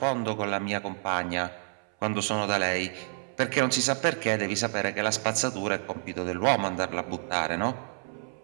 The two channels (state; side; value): silent; left; 59 dB below the other